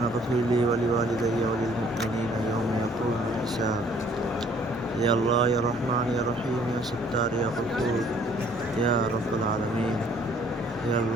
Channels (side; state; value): both; normal; correlation 0.59